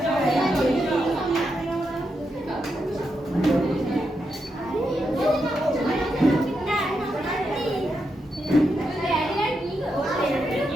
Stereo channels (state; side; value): normal; both; correlation 0.84